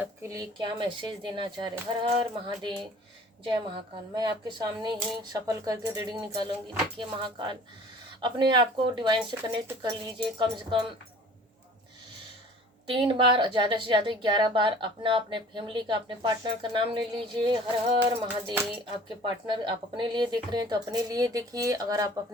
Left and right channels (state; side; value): normal; both; correlation 0.48